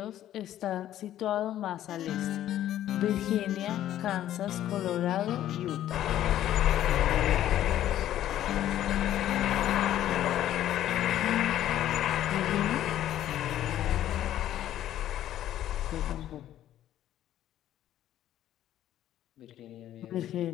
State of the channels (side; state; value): right; quieter; 12.3 dB